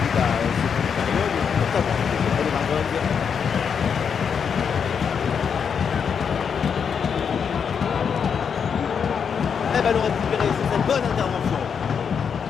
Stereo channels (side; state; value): right; quieter; 6.8 dB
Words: Et ballon récupéré sur cette bonne intervention.